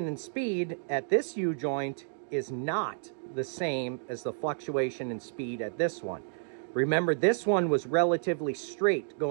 in speed at this U-joint is not the same as the fluctuation in speed at this one. Remember, this one was relatively straight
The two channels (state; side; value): silent; left; digital silence